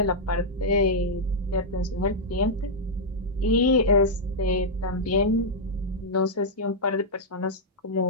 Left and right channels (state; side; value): normal; both; correlation -0.06